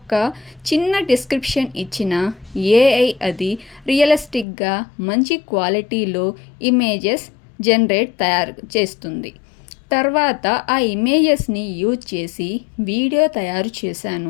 చిన్న డిస్క్రిప్షన్ ఇచ్చిన ఏఐ అది రియలిస్టిక్గా మంచి క్వాలిటీలో ఇమేజెస్ తయారు చేస్తుంది. తర్వాత ఆ ఇమేజెస్ని యూజ్ చేసి వీడియో తయారు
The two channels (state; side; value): drops out; right; at 4.5 s